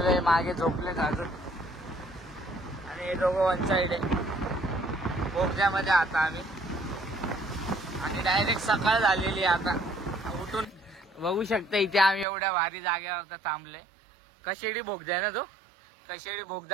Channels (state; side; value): drops out; left; at 12.2 s